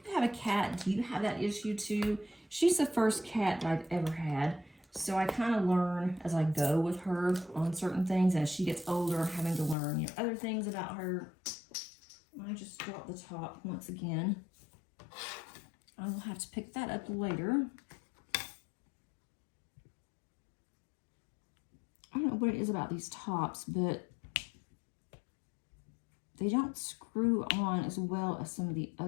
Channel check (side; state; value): right; drops out; at 9.8 s